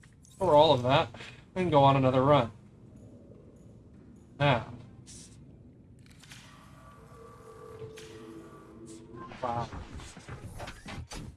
store all of that and go on another run. Now. Wow.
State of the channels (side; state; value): both; identical; correlation 1.00